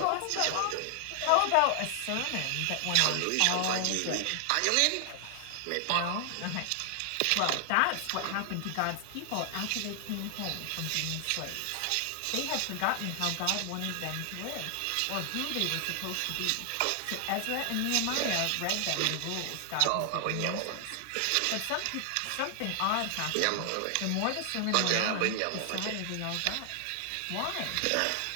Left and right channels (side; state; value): both; different; correlation 0.00